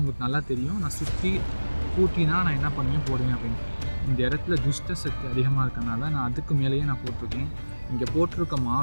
நல்லா தெரியும். நான் சுற்றி கூட்டினா நான் என்ன பண்ணுவேன் போடுவேன் அப்படின்னு. இந்த இடத்துல துஷ்ட சக்தி அதிகமாக இருக்கனால நான் அதுக்கு மேலேயே நான் போட்டிருக்கேன். இங்கே போட்டிருக்க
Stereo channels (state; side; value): inverted; both; correlation -1.00